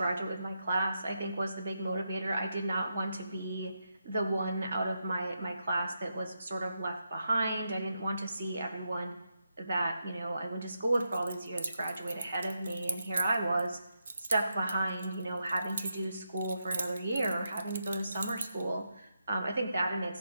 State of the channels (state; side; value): inverted; both; correlation -0.84